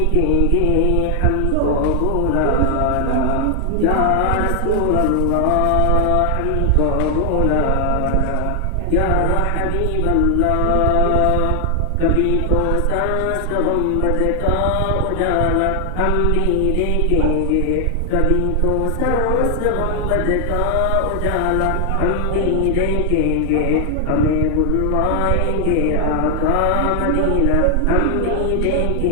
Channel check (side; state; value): both; different; correlation 0.00